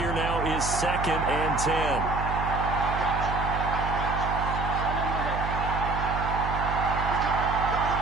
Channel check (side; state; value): right; noise; hum, 4 dB below the sound